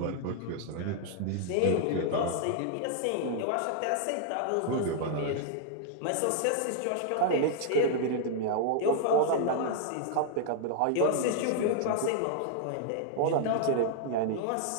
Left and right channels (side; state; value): both; different; correlation -0.01